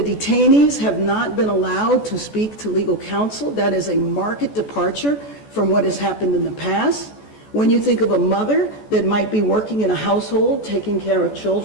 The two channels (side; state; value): right; late; 14 ms